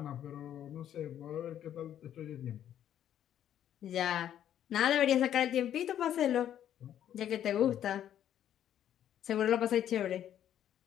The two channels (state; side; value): quieter; right; 10.6 dB